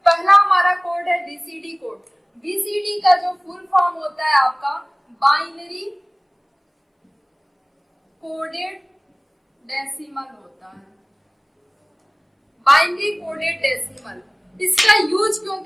पहला हमारा कोड है बीसीडी कोड। बीसीडी का जो फुल फॉर्म होता है आपका बाइनरी कोडेड डेसिमल होता है। बाइनरी कोडेड डेसिमल, इसका यूज क्यों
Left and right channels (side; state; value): both; identical; correlation 1.00